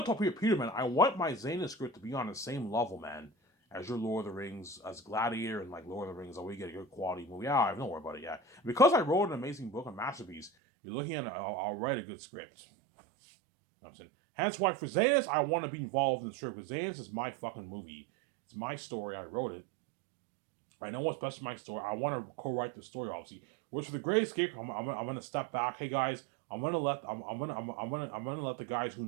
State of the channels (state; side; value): drops out; left; at 10.5 s